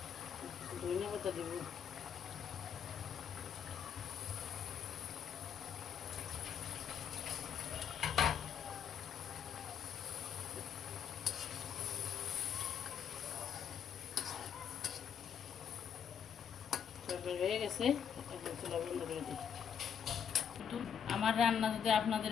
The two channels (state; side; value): quieter; right; 8.1 dB